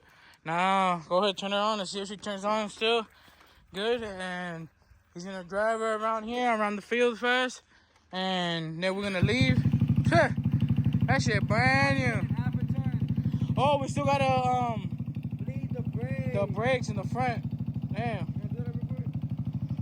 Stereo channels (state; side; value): identical; both; correlation 1.00